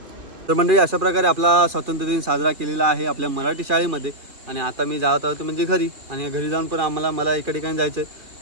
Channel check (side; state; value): left; late; 2.4 ms